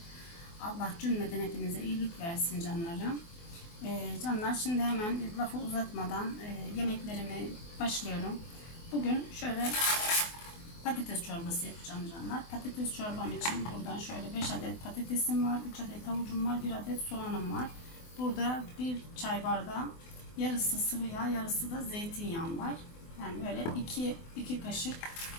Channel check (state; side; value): late; right; 24 ms